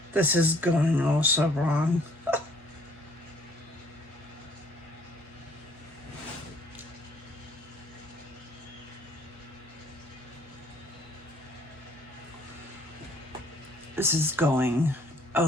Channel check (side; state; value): both; normal; correlation 0.61